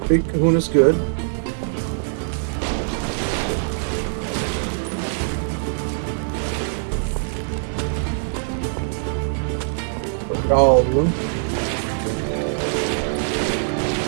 Big Kahuna's good. All of them.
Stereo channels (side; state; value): left; silent; 58 dB below the other